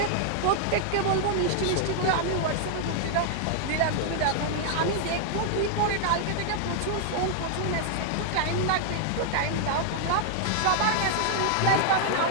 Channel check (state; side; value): different; both; correlation -0.01